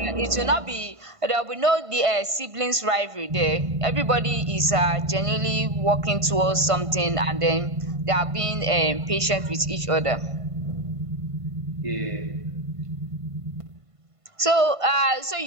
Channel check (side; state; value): left; late; 1.5 ms